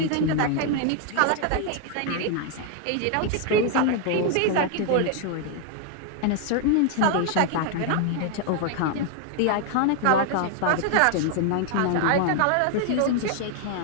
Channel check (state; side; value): different; both; correlation 0.00